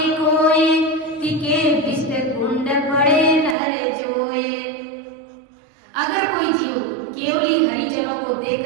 कोई तिके विष कुंड पड़े नर जोए। अगर कोई जीव केवली हरिजनों को देख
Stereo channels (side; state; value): left; drops out; at 3.6 s